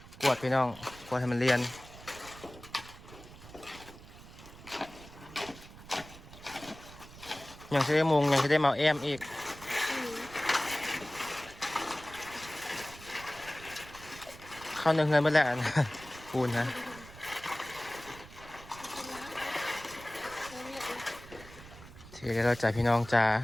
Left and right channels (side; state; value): right; noise; rumble, 18 dB below the sound